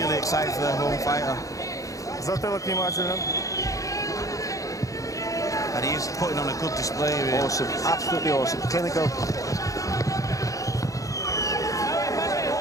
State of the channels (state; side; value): late; right; 0.16 ms